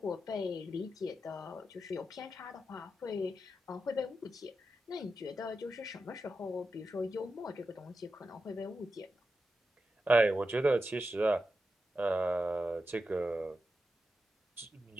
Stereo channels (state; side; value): normal; both; correlation 0.89